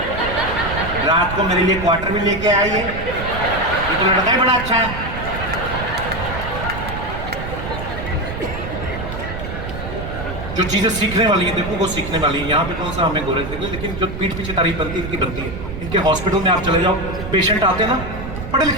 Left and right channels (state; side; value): noise; right; rumble, 7 dB below the sound